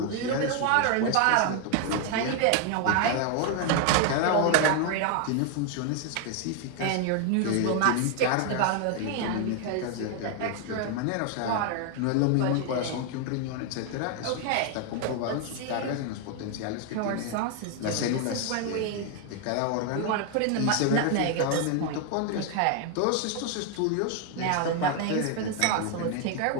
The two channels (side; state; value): both; different; correlation 0.00